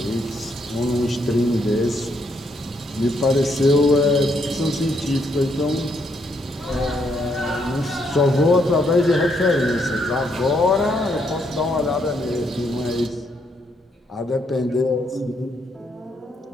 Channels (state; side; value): normal; both; correlation 0.74